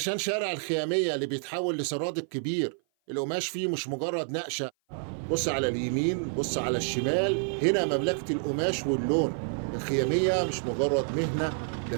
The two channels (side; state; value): left; silent; 56 dB below the other